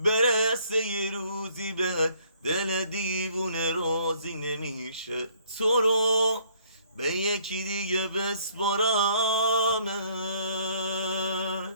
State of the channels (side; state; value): both; inverted; correlation -0.62